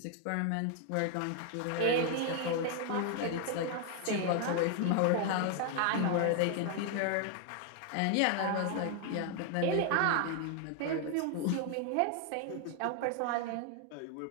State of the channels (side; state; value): both; different; correlation 0.00